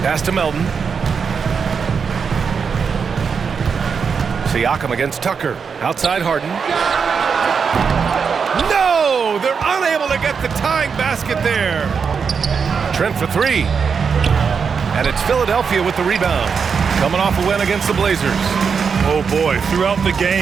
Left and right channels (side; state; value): left; quieter; 6.0 dB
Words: Pass to Melton. Siakam against Tucker. Outside Harden. No! They're unable to get the tying basket there. Trent for 3. And it's Philadelphia with the rebound. Coming off a win against the Blazers. Oh, boy. Throughout the